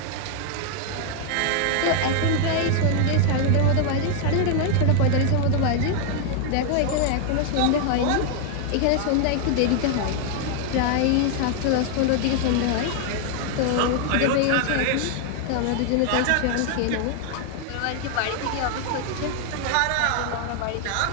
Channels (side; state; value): both; different; correlation 0.00